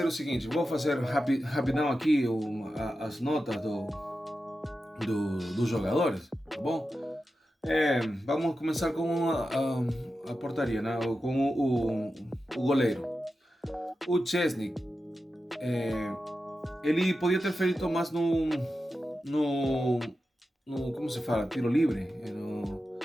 o seguinte, vou fazer rapidão aqui as notas dos jogadores, tá bom? Vamos começar com a portaria, né? Com o goleiro. O Szczęsny, ele podia ter feito mais no como se fala, tiro livre,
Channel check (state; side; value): normal; both; correlation 0.91